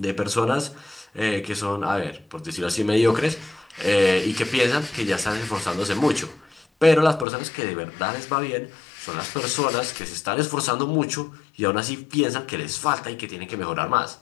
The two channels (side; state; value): right; drops out; at 7.2 s